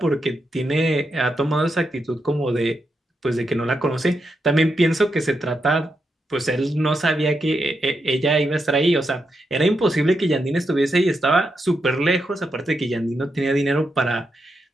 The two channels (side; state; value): both; normal; correlation 0.84